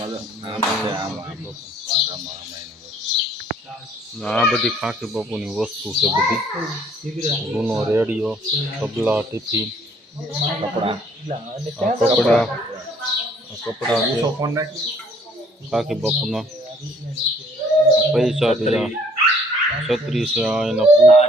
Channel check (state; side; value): normal; both; correlation 0.60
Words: આ બધી ખાકી બાપુની વસ્તુ છે. બધી જૂનો રેડિયો, તબલા, ટિફિન, કપડા છે. ખાકી બાપુના પૈસા બીજા છત્રી છે. આ એના